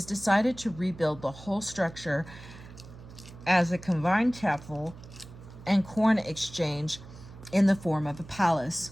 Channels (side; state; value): right; noise; hum, 17 dB below the sound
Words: decided to rebuild the whole structure as a combined chapel and corn exchange in the form of a